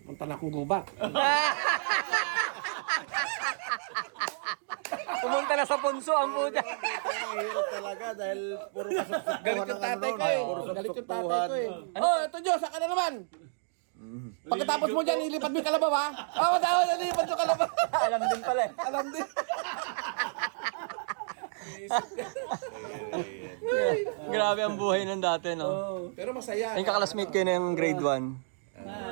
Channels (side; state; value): left; silent; digital silence